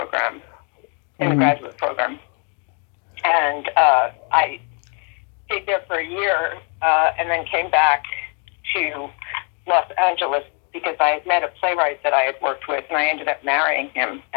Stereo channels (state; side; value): quieter; right; 37.2 dB